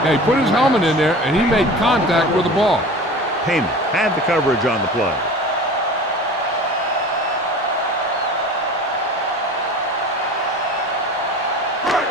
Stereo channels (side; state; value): both; normal; correlation 0.37